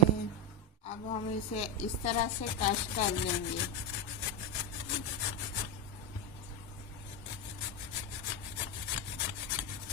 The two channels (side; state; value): both; normal; correlation 0.10